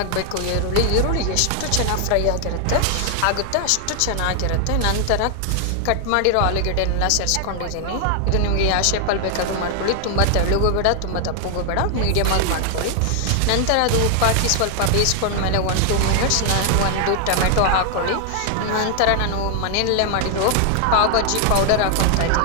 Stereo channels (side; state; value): both; different; correlation 0.00